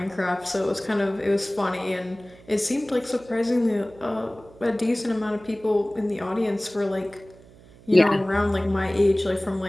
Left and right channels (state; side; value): noise; right; hum, 23 dB below the sound